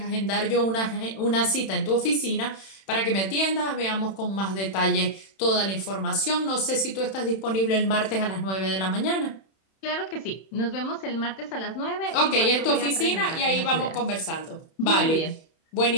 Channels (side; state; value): right; late; 31 ms